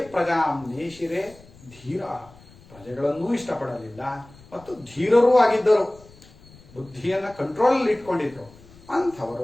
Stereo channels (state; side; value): noise; left; rumble, 24 dB below the sound